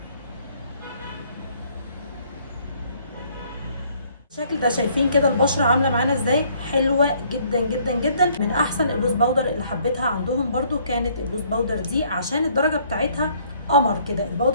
الشكل ده شايفين كده البشره عامله معانا ازاي؟ حلوه جدا جدا جدا. من احسن اللوز باودر اللي حبيتها عندهم برده كانت اللوز باودر دي، عشان الدرجه بتاعتها قمر كده.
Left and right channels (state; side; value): inverted; both; correlation -0.63